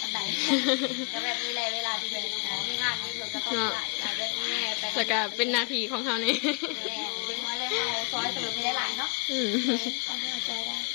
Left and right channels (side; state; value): right; quieter; 33.8 dB